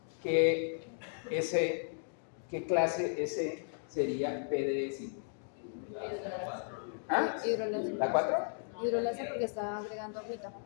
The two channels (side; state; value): right; silent; digital silence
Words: que ¿qué clase S sería PDE5? ¿Ah? Hidrolasa. ¿La 4? Hidrolasa porque está agregando agüita.